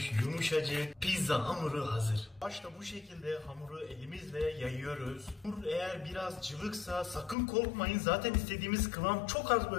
Yumuşacık. Pizza hamuru hazır. Başta bu şekilde hamuru elimizle yayıyoruz. Hamur eğer biraz cıvıksa sakın korkmayın. Zaten istediğimiz kıvam çok az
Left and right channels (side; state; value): right; drops out; at 7.4 s